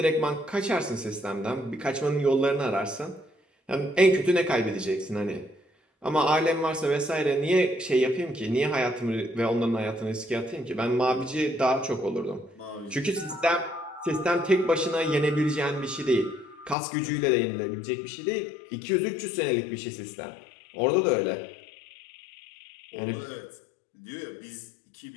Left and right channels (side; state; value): right; drops out; at 16.8 s